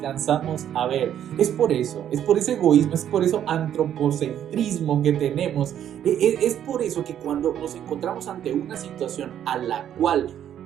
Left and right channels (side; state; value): left; quieter; 10.3 dB